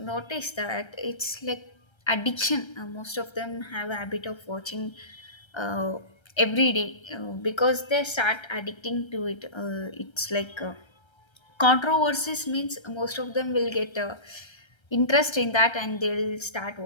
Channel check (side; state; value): right; late; 1.3 ms